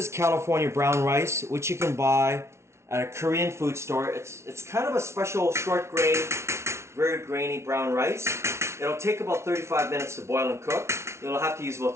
California brown rice, which you can buy at a Korean food store. It's kind of a special short grain, very grainy brown rice. It'll take about 35 minutes to boil and cook. You'll have to use about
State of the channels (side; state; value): left; late; 0.13 ms